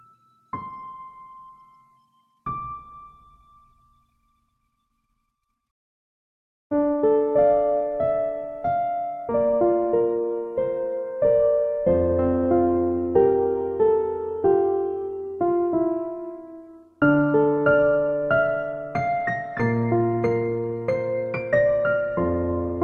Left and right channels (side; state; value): both; identical; correlation 1.00